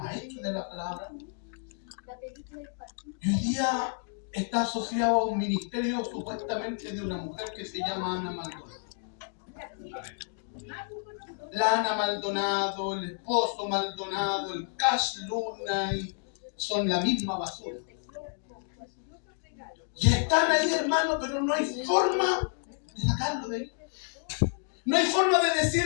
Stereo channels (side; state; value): right; silent; 58 dB below the other